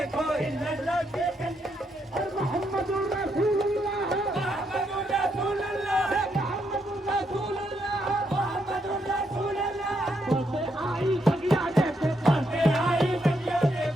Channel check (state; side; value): normal; both; correlation 0.78